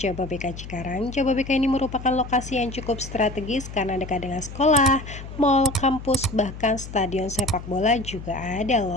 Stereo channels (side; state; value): left; noise; hum, 12 dB below the sound